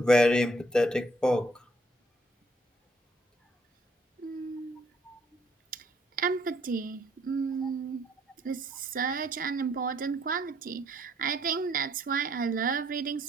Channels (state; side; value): normal; both; correlation 0.66